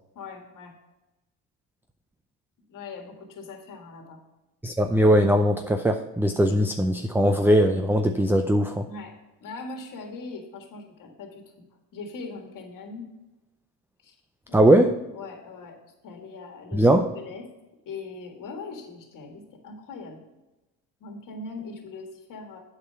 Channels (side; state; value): both; normal; correlation 0.73